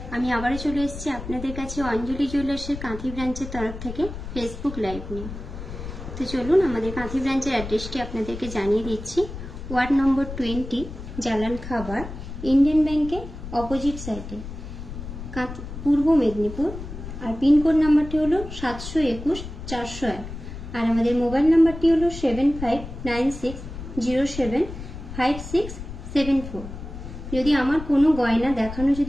আমি আবারও চলে এসেছি আপনাদের কাছে অঞ্জলি জুয়েলার্সের কাঁথি ব্রাঞ্চের তরফ থেকে ফেসবুক লাইভ নিয়ে। তো চলুন আমাদের কাঁথি ব্রাঞ্চের অ্যাড্রেসটি আপনাদেরকে জানিয়ে দিচ্ছি। ওয়ার্ড নম্বর 20, জালান খাবার, ইন্ডিয়ান ব্যাংকের অপোজিট সাইডে, পূর্ব মেদিনীপুর। আর পিনকোড নাম্বারটি হলো 721-401। আর আমাদের মোবাইল নাম্বারটি হলো 7596075674। যদি আমার কোনো গয়না দেখানো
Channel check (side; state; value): left; noise; rumble, 10 dB below the sound